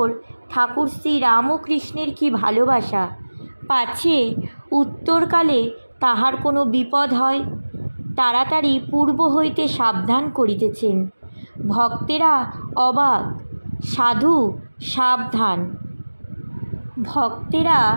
ঠাকুর শ্রী রামকৃষ্ণের কি ভালোবাসা! পাছে উত্তরকালে তাহার কোনো বিপদ হয়। তাড়াতাড়ি পূর্ব হইতে সাবধান করিতেছেন। ভক্তেরা অবাক, সাধু সাবধান। ভক্তেরা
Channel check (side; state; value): both; inverted; correlation -1.00